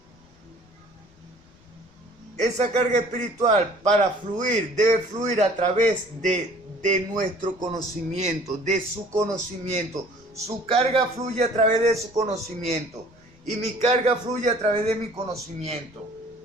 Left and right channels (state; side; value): noise; left; rumble, 28 dB below the sound